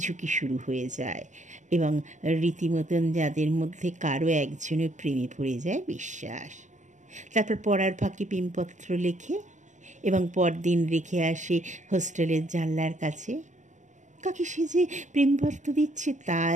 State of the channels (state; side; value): late; left; 0.35 ms